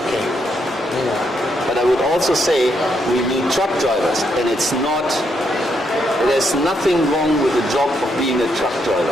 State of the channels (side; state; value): both; normal; correlation 0.77